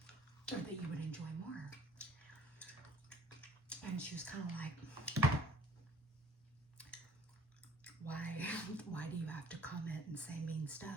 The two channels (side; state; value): both; normal; correlation 0.54